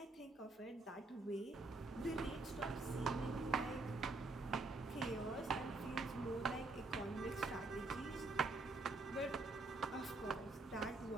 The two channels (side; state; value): left; quieter; 3.2 dB